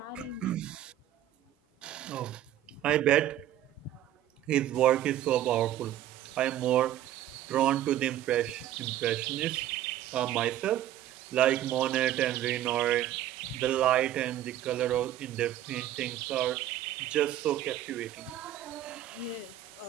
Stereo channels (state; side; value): quieter; left; 12.3 dB